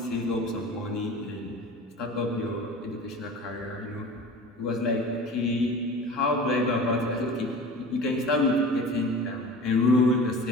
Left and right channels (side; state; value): both; normal; correlation 0.37